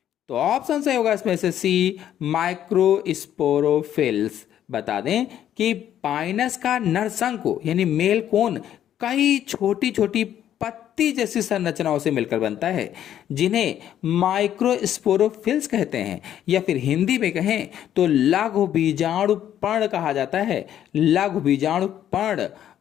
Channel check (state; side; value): quieter; right; 10.8 dB